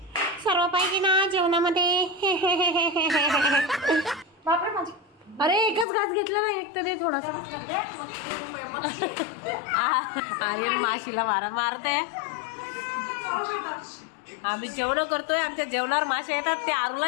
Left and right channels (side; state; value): right; drops out; at 5.9 s